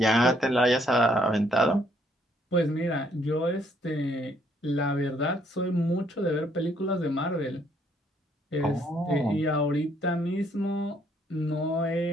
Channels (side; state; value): both; normal; correlation 0.68